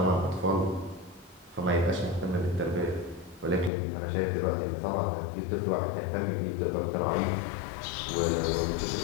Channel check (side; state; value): right; drops out; at 3.7 s